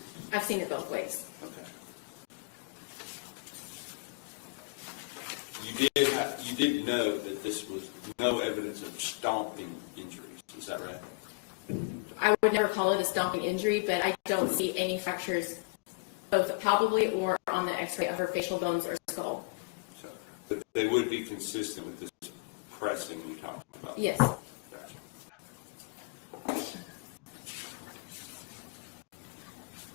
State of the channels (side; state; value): right; quieter; 31.2 dB